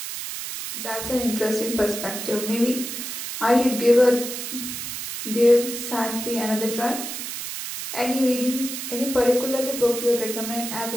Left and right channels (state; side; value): noise; right; hiss, 6 dB below the sound